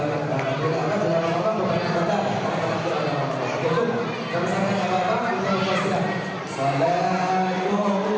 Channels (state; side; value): identical; both; correlation 1.00